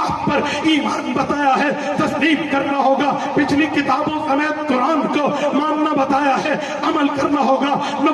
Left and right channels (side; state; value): both; identical; correlation 1.00